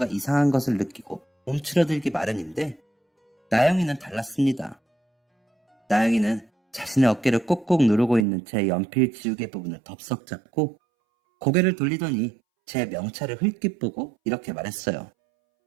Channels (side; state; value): left; drops out; at 8.2 s